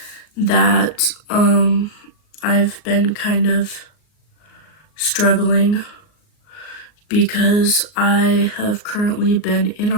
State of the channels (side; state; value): right; late; 38 ms